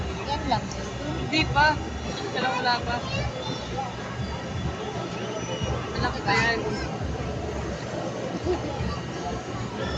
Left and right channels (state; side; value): identical; both; correlation 1.00